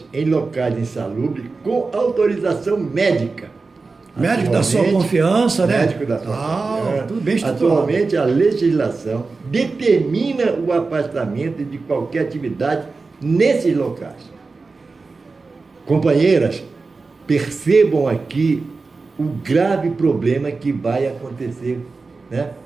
em locais insalubres com autorização médica. Médico da sua confiança, né? Médico da sua confiança. Tudo bem estruturado. Atualmente, a legislação determina o afastamento de qualquer atividade nesses locais. Companheiras, percebam aqui o grave problema que vai acontecer, né?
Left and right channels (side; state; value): left; quieter; 4.1 dB